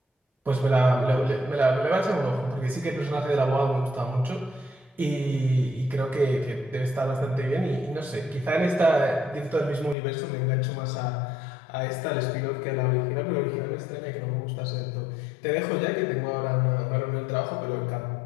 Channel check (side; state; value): right; drops out; at 10.0 s